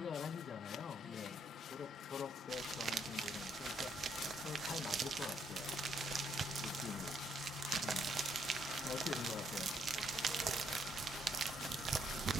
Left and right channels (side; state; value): both; normal; correlation 0.72